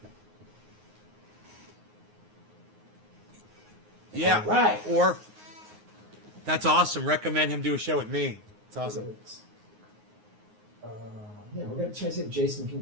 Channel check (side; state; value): left; late; 9.6 ms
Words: Yeah. All right. Or that's awesome. Recommend him do a show with me. It's awesome. Yeah, we're gonna try to see if Jason